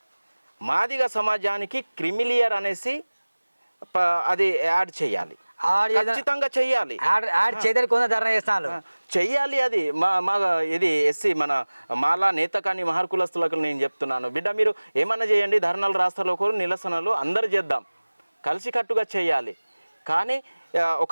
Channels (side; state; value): both; inverted; correlation -1.00